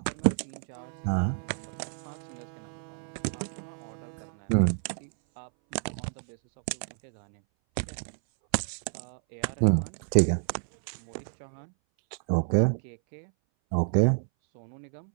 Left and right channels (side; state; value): left; silent; 58 dB below the other